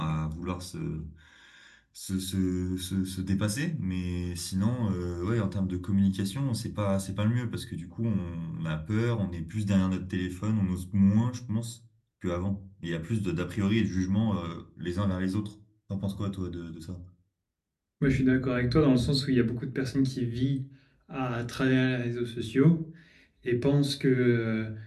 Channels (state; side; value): identical; both; correlation 1.00